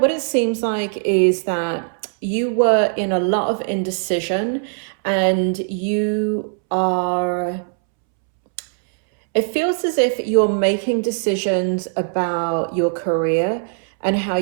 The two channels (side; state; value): left; silent; 66 dB below the other